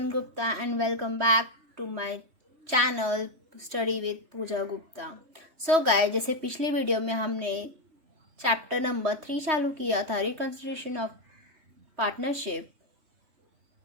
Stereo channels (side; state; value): left; late; 3.1 ms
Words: Gupta and welcome back to my channel Study with Pooja Gupta. So guys, जैसे पिछली video में हमने chapter number 3 चालू किया था, reconsideration of partnership,